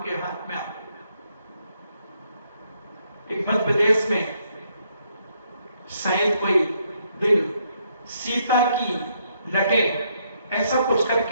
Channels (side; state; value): both; inverted; correlation -0.73